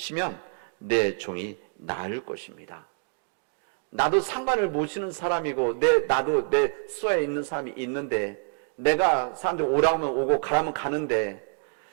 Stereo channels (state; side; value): silent; left; 60 dB below the other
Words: 내 종이 나을 것입니다. 나도 상관을 모시는 사람이고 나도 내 수하에 있는 사람이 있는데 내가 사람들이 오라면 오고 가라면 가는데